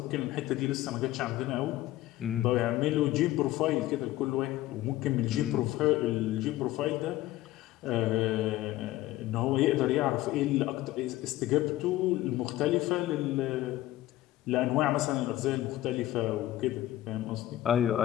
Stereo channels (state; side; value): quieter; right; 15.4 dB